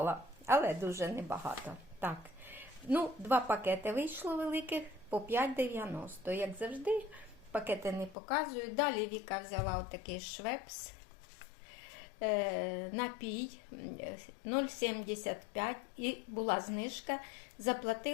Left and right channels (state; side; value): drops out; right; at 8.2 s